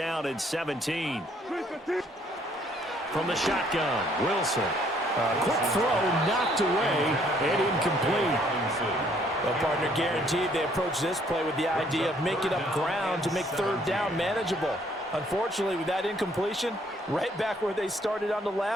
and 17. From the shotgun, Wilson. Quick throw knocked away and incomplete. Well, partner, guaranteed they approach this play with the idea of making up ground to make third down manageable. Unfortunately, with that incompletion, right back where they started on the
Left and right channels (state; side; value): normal; both; correlation 0.65